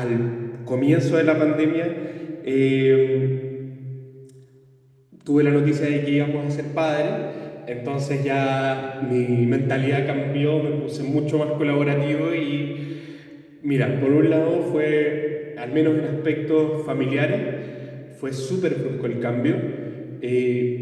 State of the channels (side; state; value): both; identical; correlation 1.00